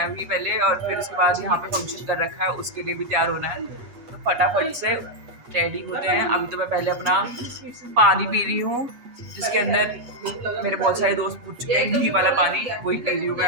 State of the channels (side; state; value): left; late; 8.3 ms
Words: अभी पहले और फिर उसके बाद यहाँ पे फंक्शन कर रखा है उसके लिए भी तैयार होना है. तो फटाफट से रेडी होते हैं. अभी तो मैं पहले अपना पानी पी रही हूँ जिसके अंदर मेरे बहुत सारे दोस्त पूछ चुके हैं. घी वाला पानी वही पी रही हूँ मैं